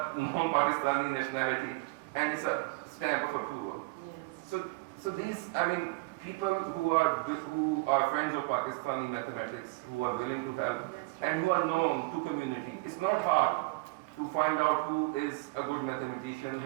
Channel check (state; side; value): quieter; left; 25.4 dB